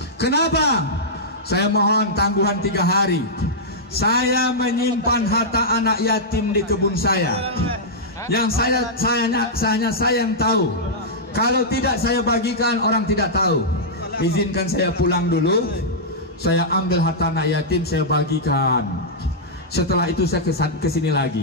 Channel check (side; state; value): both; normal; correlation -0.10